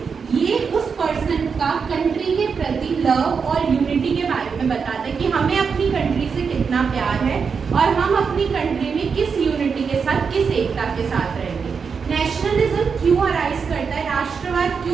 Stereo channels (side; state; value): left; quieter; 5.8 dB